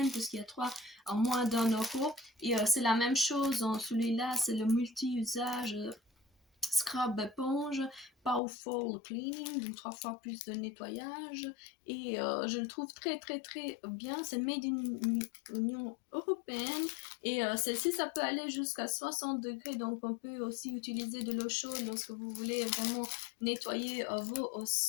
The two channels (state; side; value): drops out; right; at 8.4 s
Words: puisqu'il y a 3 en moins d'1 €. Et c'est la même chose en celui-là, c'est le multi-usage. Scrub éponge, Powerful Cleaning, donc 3 fois plus de nettoyage. Et je le trouve très très très bien. C'est made in Union Européenne. Et celle-ci, ça peut aller jusqu'à 60 degrés. Donc on peut aussi utiliser de l'eau chaude lorsque vous voulez vraiment nettoyer vos